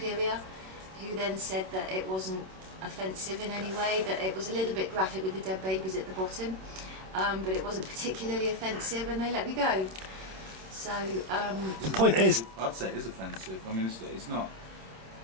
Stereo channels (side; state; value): left; late; 27 ms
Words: who then said that it wasn't offensive in any way, that it was a little bit graphic with the dead babies at the bottom, but it wasn't particularly offensive, and they let me go. So The point is, I'd say it is offensive. I mean, it's not.